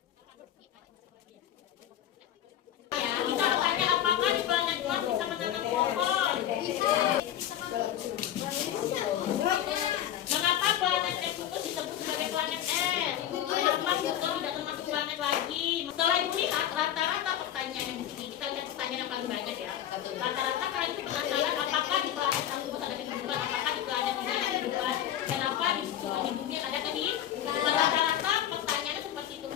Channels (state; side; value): quieter; right; 11.2 dB